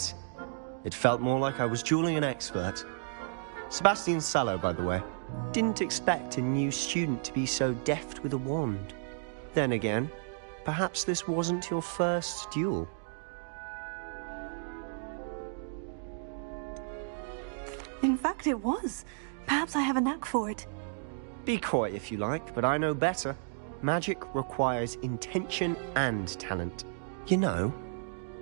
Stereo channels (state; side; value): silent; left; digital silence